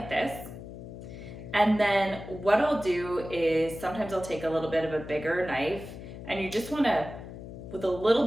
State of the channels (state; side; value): noise; left; hum, 12 dB below the sound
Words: this. And then what I'll do is sometimes I'll take a little bit of a bigger knife, and you just wanna, with a little